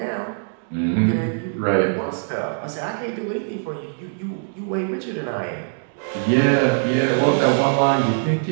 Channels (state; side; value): silent; left; digital silence